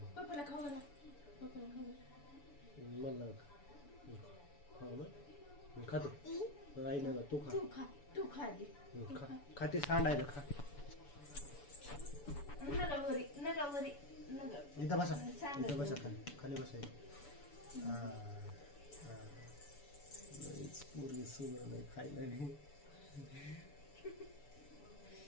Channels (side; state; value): right; late; 7.0 ms